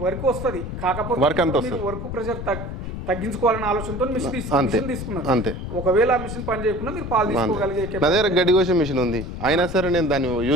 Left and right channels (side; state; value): left; noise; rumble, 7 dB below the sound